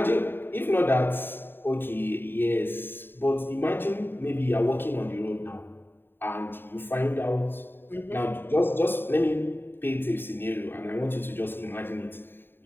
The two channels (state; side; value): late; right; 0.10 ms